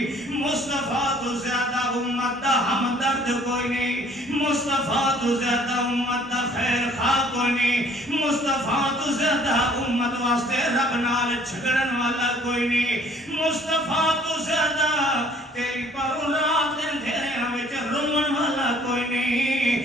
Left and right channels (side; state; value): both; normal; correlation 0.57